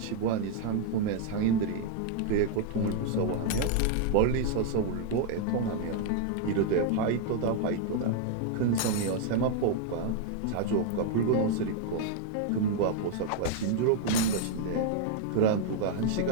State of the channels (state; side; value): different; both; correlation 0.00